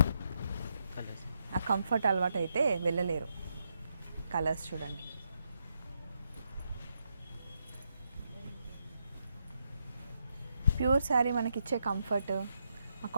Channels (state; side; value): inverted; both; correlation -0.80